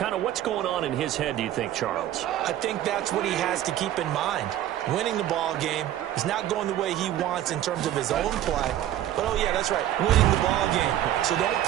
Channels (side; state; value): left; quieter; 12.4 dB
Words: of what's going on in his head, do you think, Charles? I think that's what he has to keep in mind. Winning the ball game is not going the way he wants in terms of his own play. But, oh, yeah, that's right, winning the ball game. So don't